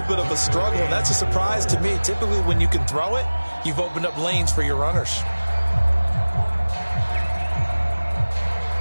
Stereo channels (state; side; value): inverted; both; correlation -1.00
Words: bit of a struggle, and that's a surprise to me. Typically, when you can throw it, you've opened up lanes for your runners.